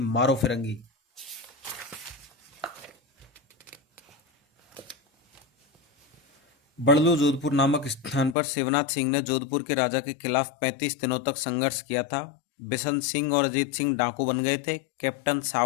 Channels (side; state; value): right; drops out; at 8.3 s